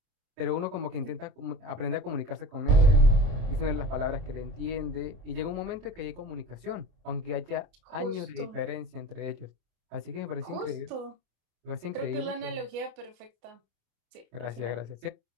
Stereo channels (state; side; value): late; left; 27 ms